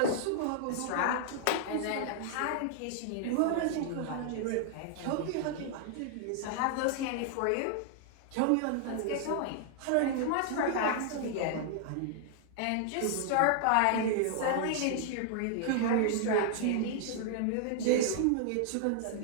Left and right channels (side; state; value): both; different; correlation -0.01